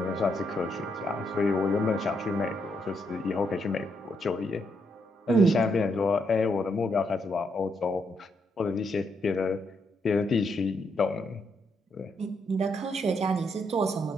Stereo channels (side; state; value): both; normal; correlation 0.77